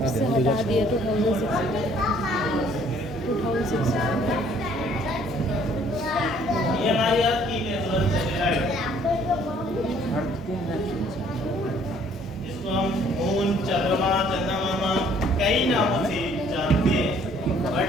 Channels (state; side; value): normal; both; correlation 0.60